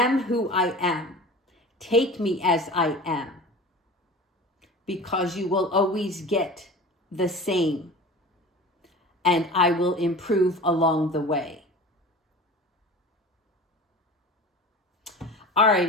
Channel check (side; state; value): both; normal; correlation 0.37